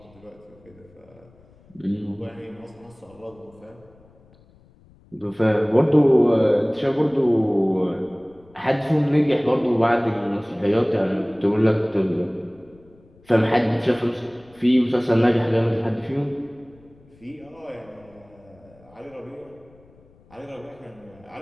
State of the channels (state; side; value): noise; left; rumble, 28 dB below the sound